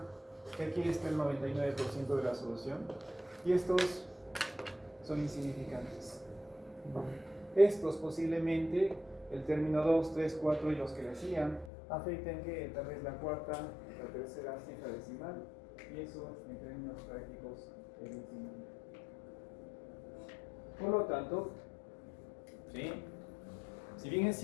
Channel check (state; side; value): drops out; right; at 11.7 s